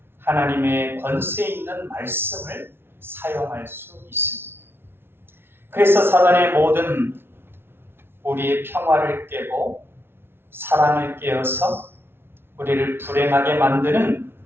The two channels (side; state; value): left; late; 0.11 ms